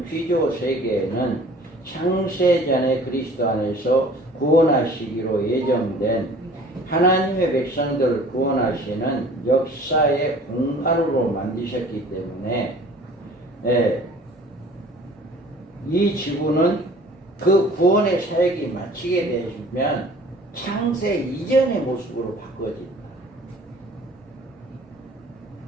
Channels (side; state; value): both; normal; correlation 0.49